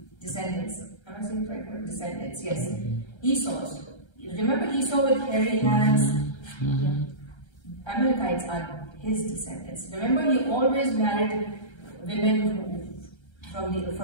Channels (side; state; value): right; late; 1.3 ms